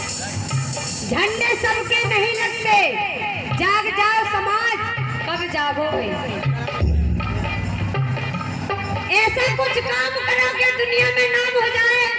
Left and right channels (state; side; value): identical; both; correlation 1.00